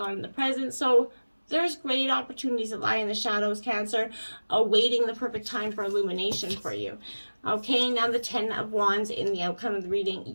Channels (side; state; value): both; inverted; correlation -1.00